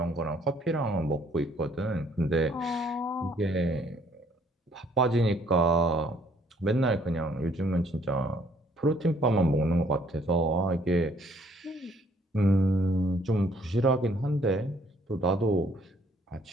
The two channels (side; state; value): both; normal; correlation 0.63